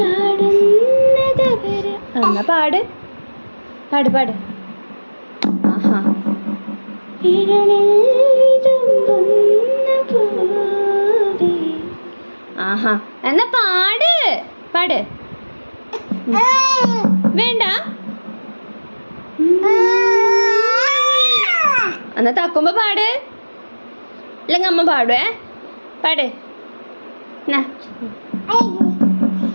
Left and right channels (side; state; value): both; inverted; correlation -1.00